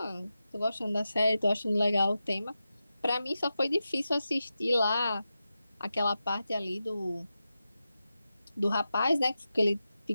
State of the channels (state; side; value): inverted; both; correlation -0.91